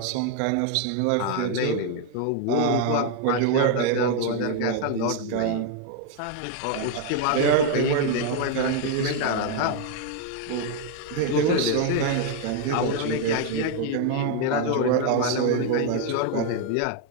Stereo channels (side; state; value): both; different; correlation 0.01